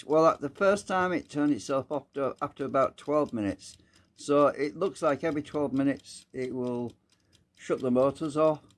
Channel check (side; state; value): both; identical; correlation 1.00